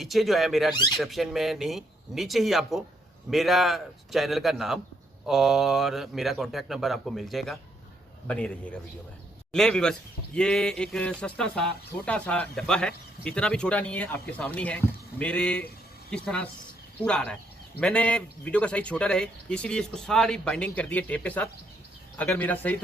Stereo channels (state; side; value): normal; both; correlation 0.73